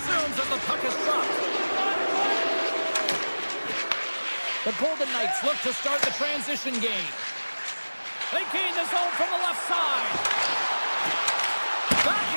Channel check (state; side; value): inverted; both; correlation -1.00